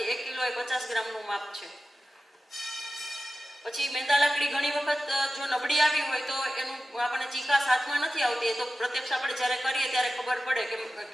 1 કિલો એ 50 ગ્રામનું માપ છે. પછી મેંદા લાકડી ઘણી વખત જો નબળી આવી હોય તો એનું આપણને ચીકાશ હાથમાં નથી આવતી, તો પ્રત્યક્ષ આપણે જ્યારે કરીએ ત્યારે ખબર પડે કે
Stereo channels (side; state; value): both; normal; correlation 0.94